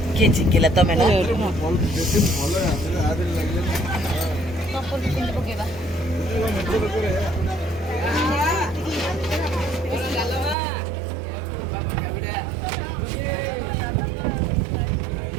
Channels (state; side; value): drops out; left; at 10.6 s